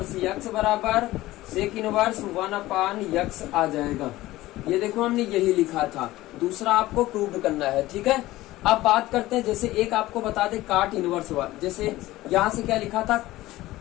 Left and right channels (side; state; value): right; quieter; 17.1 dB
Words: यक्स बराबर सेक इनवर्स 1/x आ जाएगा। ये देखो हमने यही लिखा था। दूसरा आपको प्रूव करना है, ठीक है। अब बात करते हैं, जैसे एक आपको बता दे काट इनवर्स, जैसे यहां से क्या लिखा था,